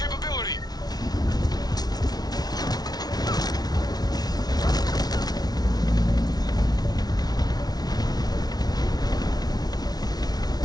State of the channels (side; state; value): right; late; 0.19 ms